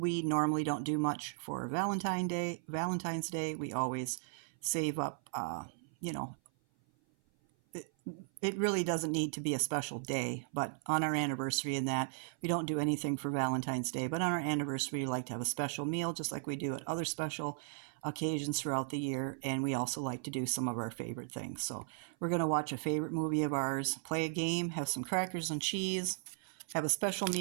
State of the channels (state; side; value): silent; left; 54 dB below the other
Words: normally don't do much for Valentine's Day. We always save up, it really doesn't need to be a special day, but on our anniversary and that, we don't do anything for Valentine's Day. But on our anniversary, we like to have a special meal, just like we do at other special occasions throughout the year. And we also like to do some of our favorite things. So we're going to watch a favorite movie of ours, play a game, have some crackers and cheese, have a special